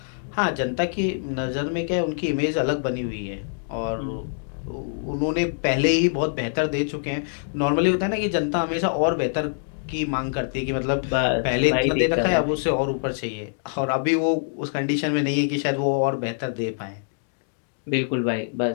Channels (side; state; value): right; silent; digital silence